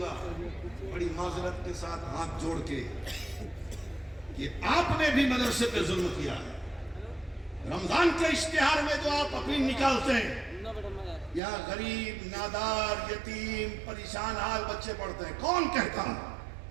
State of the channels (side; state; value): left; drops out; at 11.4 s